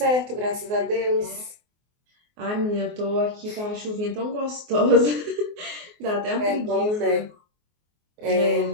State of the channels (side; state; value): left; late; 24 ms